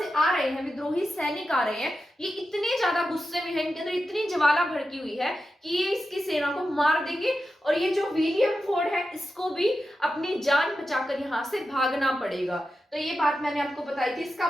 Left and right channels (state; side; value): normal; both; correlation 0.90